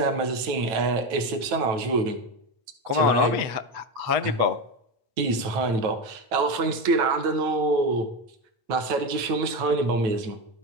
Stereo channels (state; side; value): late; left; 9.1 ms